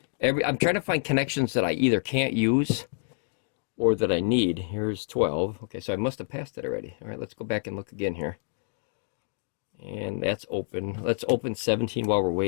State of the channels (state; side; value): silent; right; digital silence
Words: I'm trying to find connections that I either can't use or that I need. Here's 12. Okay, so I must have passed it already. All right, let's go back and look again here. And that's open. Let's open 17 while we're